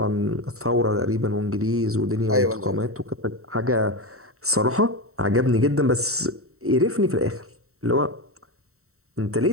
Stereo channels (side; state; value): left; late; 0.64 ms